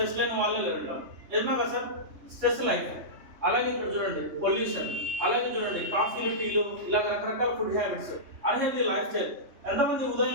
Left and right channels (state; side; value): late; left; 3.2 ms